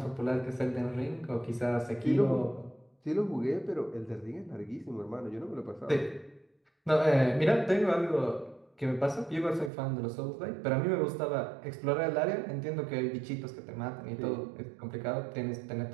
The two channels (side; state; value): left; drops out; at 9.7 s